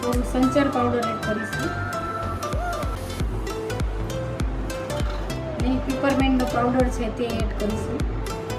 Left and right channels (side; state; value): both; identical; correlation 1.00